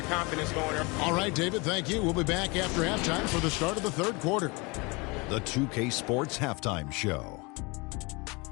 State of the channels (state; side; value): quieter; right; 27.4 dB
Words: confidence going. All right, David, thank you. We'll be back after halftime for the start of the third quarter. The 2K Sports Halftime Show.